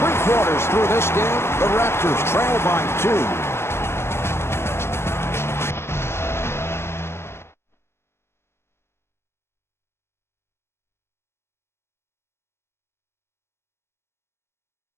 quarters through this game, the Raptors trail by 2.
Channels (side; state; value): right; late; 0.12 ms